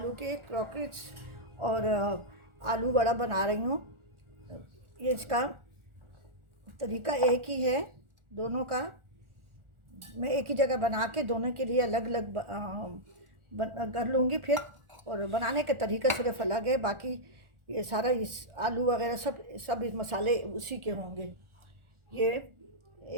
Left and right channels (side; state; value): left; late; 1.4 ms